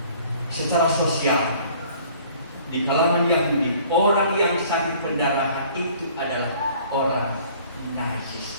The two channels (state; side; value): inverted; both; correlation -0.54